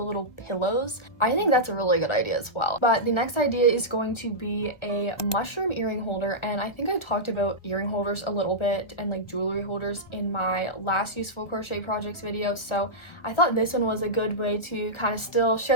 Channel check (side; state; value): right; late; 1.4 ms